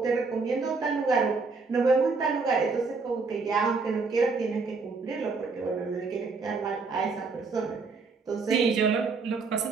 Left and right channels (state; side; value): quieter; left; 4.4 dB